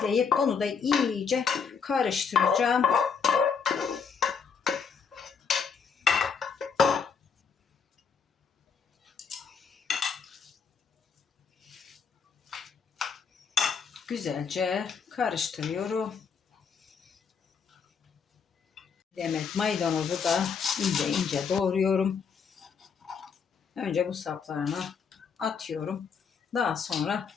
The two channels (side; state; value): right; quieter; 6.1 dB